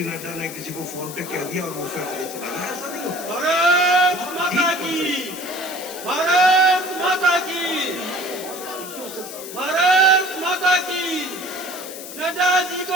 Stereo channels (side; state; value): left; noise; hiss, 12 dB below the sound